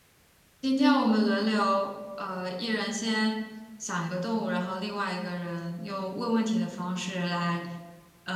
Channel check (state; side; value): identical; both; correlation 1.00